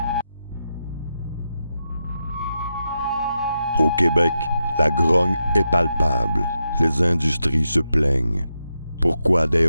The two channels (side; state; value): both; inverted; correlation -0.87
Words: Au Québec, la grogne est palpable. Les industries se plaignent. Pourquoi des